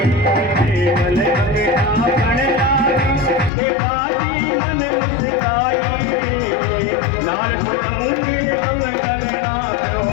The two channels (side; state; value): right; drops out; at 3.5 s